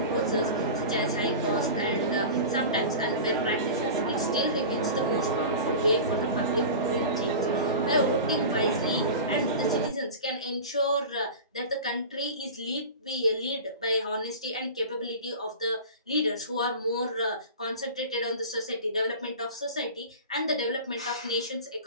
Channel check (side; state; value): both; inverted; correlation -0.32